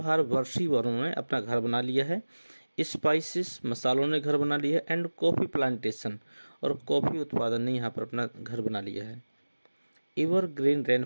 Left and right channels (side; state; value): both; inverted; correlation -1.00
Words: वर्षी वनों ने अपना घर बना लिया है। स्पाइसेस, मसालों ने घर बना लिया है। एंड कॉफ़ी प्लांटेशन, और कॉफ़ी उत्पादन ने यहाँ पर अपना घर बना लिया है। एवर ग्रीन रेन